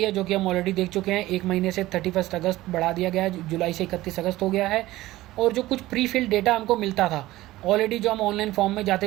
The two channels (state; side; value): quieter; left; 17.1 dB